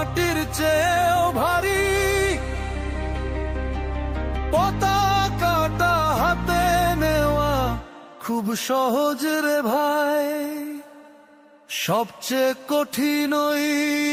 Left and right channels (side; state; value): both; identical; correlation 1.00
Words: চেয়েও ভারী। পতাকাটা হাতে নেওয়া খুব সহজ রে ভাই, সবচেয়ে কঠিন ওই